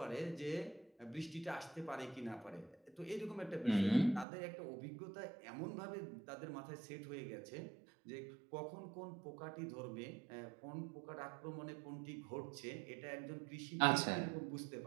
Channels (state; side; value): drops out; left; at 4.2 s